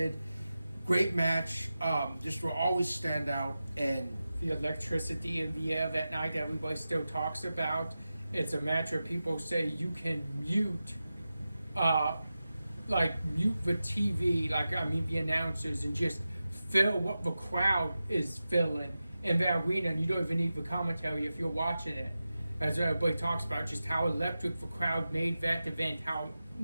Great match, just will always stand out. And the electricity in the air that night everybody still talks about. It's a match where people say you can mute the TV, the announcers, and just feel what the crowd is feeling in the arena, and you don't even need the commentary if you're watching it. As everybody talks about, just how electric the crowd made that event, how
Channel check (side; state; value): both; inverted; correlation -0.93